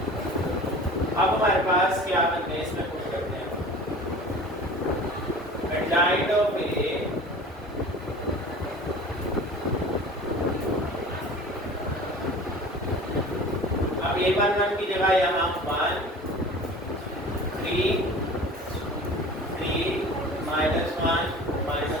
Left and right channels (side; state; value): both; normal; correlation 0.40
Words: अब हमारे पास क्या बनते हैं, इसमें कुछ करते हैं, एडजाइंट ऑफ ए अब a11 की जगह यहाँ 1 3 3 -1